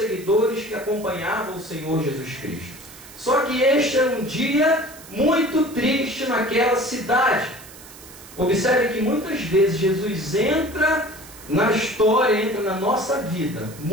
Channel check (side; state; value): right; noise; hiss, 18 dB below the sound